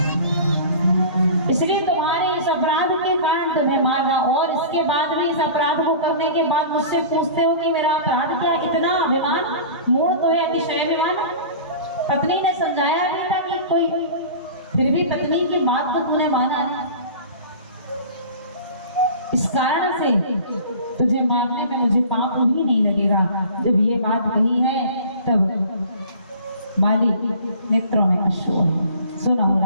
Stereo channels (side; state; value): both; inverted; correlation -0.40